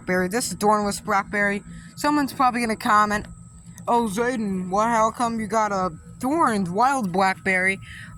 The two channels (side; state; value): both; identical; correlation 1.00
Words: This is thornless blackberry. Someone's probably gonna comment, "Oh, Zayden, how come you got a thorned wild blackberry